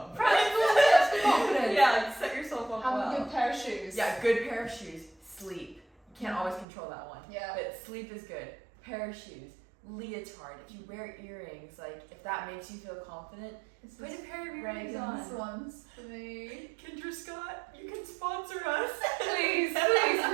Practical tips for confidence. Yeah, like set yourself up Have well. a good pair of shoes. Yeah, good pair of shoes. Sleep. You can't always control that one. Yeah. But sleep is good. Pair of shoes. Leotard. If you wear earrings, like if that makes you feel confident, This put is a pair of earrings Reagan's on. ones for me. Kendra Scott, you can sponsor us. Please,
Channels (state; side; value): drops out; left; at 6.7 s